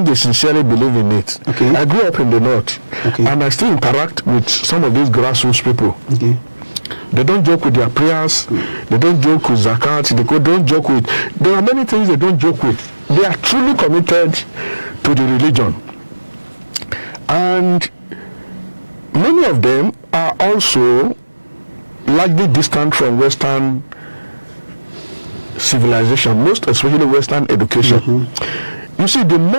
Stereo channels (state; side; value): inverted; both; correlation -1.00